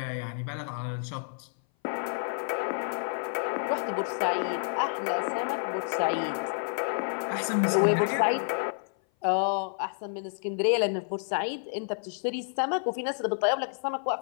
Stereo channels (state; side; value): silent; right; 56 dB below the other